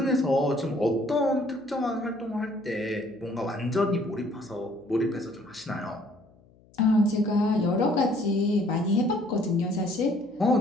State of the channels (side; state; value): left; noise; hum, 29 dB below the sound